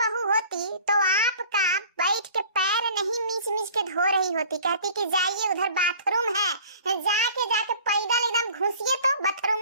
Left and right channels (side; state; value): both; inverted; correlation -0.48